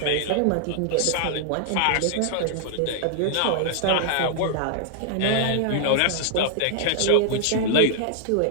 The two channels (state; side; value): different; both; correlation -0.01